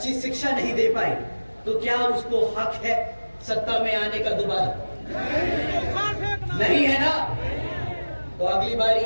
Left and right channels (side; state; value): both; inverted; correlation -1.00